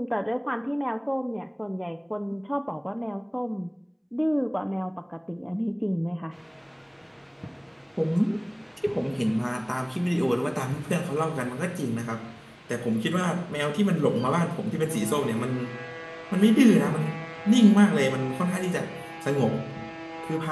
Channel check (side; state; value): both; identical; correlation 1.00